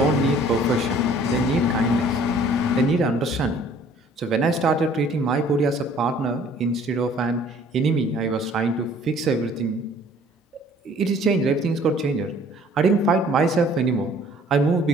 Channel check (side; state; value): both; normal; correlation 0.55